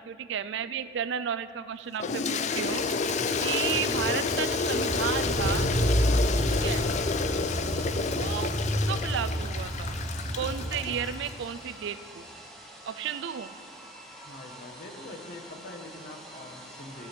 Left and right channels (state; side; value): normal; both; correlation 0.39